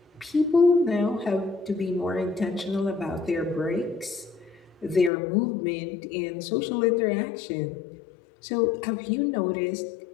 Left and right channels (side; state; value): right; drops out; at 5.1 s